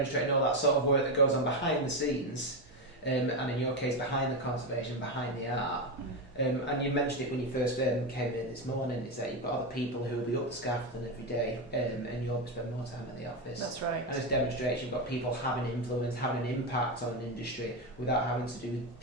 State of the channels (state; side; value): normal; both; correlation 0.12